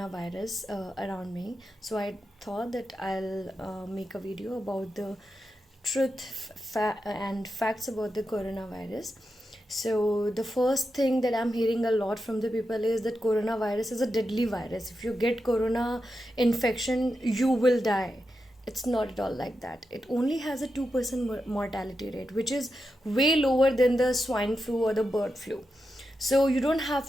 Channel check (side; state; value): both; normal; correlation 0.88